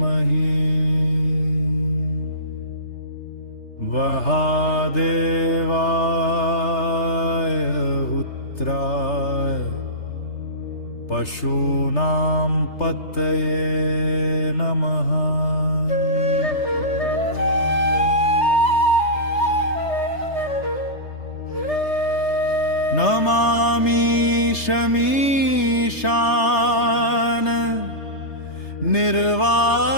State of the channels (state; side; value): late; right; 3.3 ms